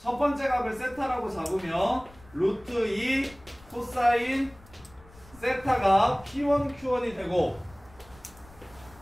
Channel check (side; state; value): left; noise; rumble, 24 dB below the sound